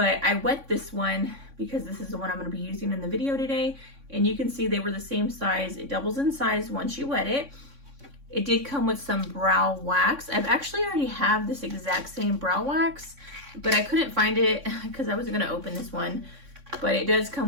I wet this one because this is the one I'm going to be using in the video today. And you can see they were the same size. It doubles in size once you wet it. It did come with some brow wax. I've actually already have this exact same brow wax, but I couldn't find it because I wasn't going to open this one. But it does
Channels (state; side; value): late; left; 3.6 ms